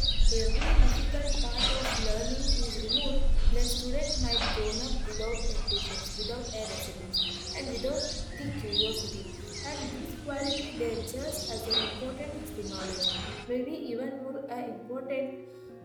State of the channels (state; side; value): identical; both; correlation 1.00